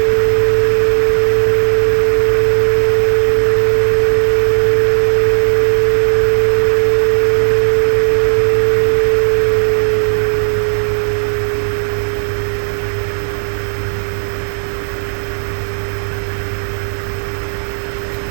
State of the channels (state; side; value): silent; left; digital silence